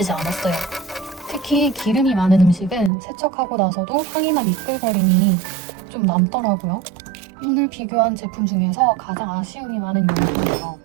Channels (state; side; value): drops out; left; at 2.9 s